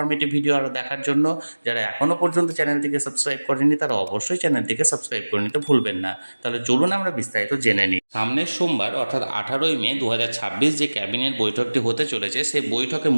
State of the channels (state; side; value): inverted; both; correlation -1.00